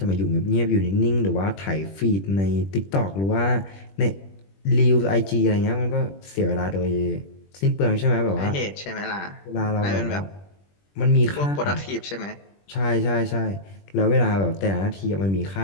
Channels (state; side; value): late; right; 21 ms